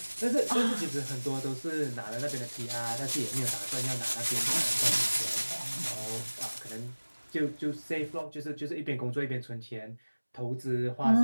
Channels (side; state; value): both; inverted; correlation -1.00